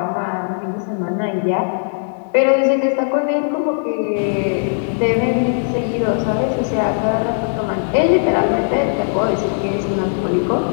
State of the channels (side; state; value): right; silent; 67 dB below the other